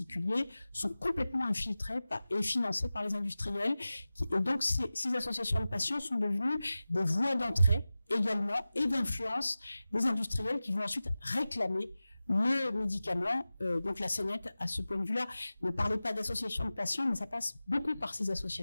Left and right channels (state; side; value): inverted; both; correlation -0.96